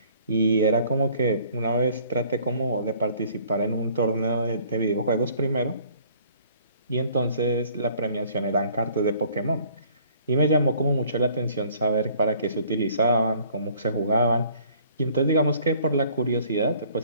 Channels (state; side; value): inverted; both; correlation -0.57